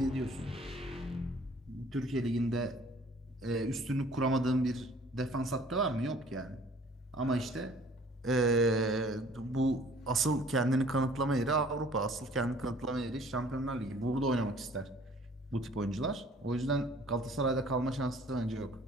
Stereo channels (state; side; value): normal; both; correlation 0.53